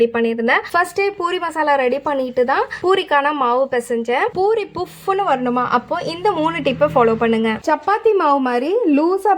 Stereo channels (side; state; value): both; identical; correlation 1.00